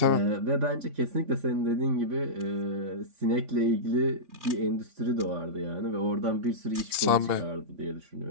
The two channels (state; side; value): late; left; 2.8 ms